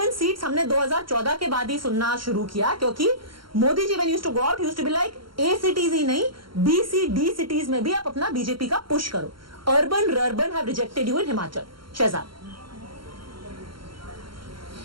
seats हमने 2014 के बाद ही सुनना शुरू किया, क्योंकि Modi ji when used to go out, used to be like A cities ही नहीं, B, C, D cities में भी आप अपना बीजेपी का पुश करो. Urban have rejected you in Himachal. Shehzad.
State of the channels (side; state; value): left; late; 0.73 ms